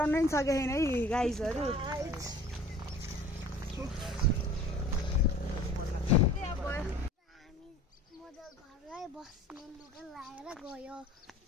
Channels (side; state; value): both; normal; correlation 0.47